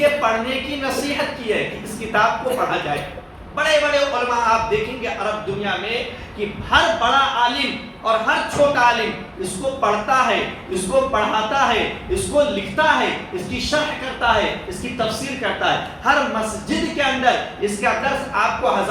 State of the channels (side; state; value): both; identical; correlation 1.00